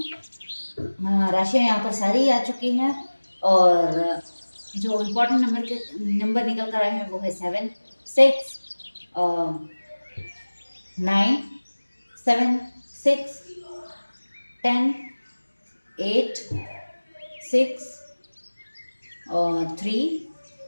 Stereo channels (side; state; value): both; inverted; correlation -1.00